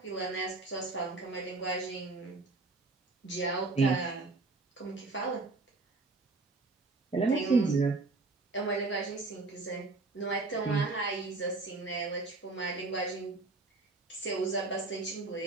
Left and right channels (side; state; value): left; quieter; 3.5 dB